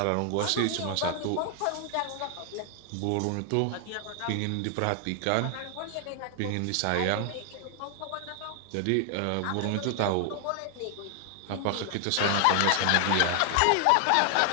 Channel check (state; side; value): different; both; correlation 0.00